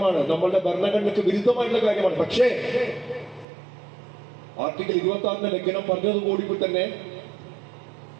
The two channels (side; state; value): left; drops out; at 3.5 s